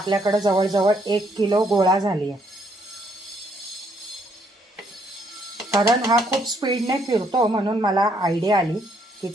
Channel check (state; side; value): normal; both; correlation 0.70